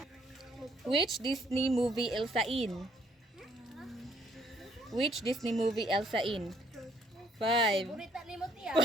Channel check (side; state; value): both; normal; correlation 0.66